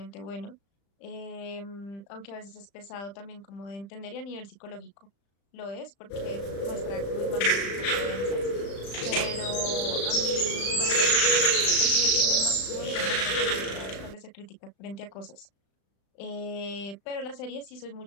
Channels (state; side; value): late; right; 35 ms